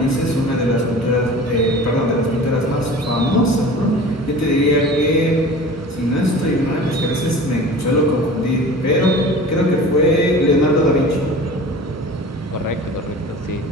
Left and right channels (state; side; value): normal; both; correlation 0.39